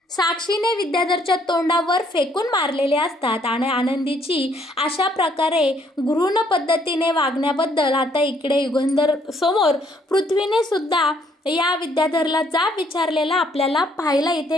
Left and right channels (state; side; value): normal; both; correlation 0.67